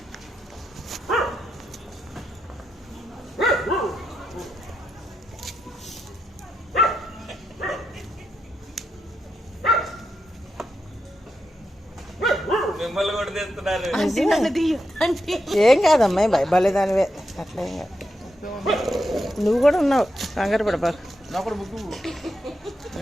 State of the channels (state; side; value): normal; both; correlation 0.85